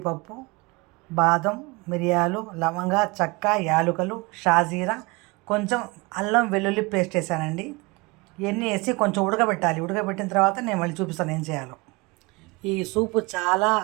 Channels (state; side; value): quieter; left; 26.1 dB